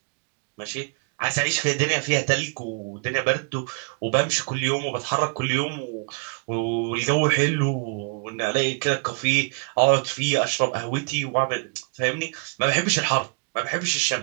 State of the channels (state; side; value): quieter; left; 36.7 dB